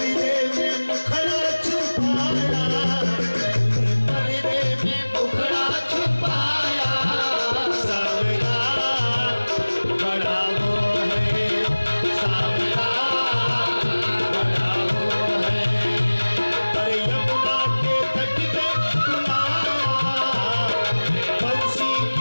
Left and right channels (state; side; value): inverted; both; correlation -1.00